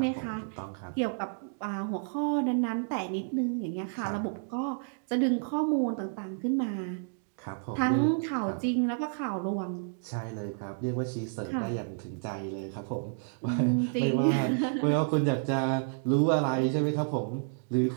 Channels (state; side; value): silent; left; digital silence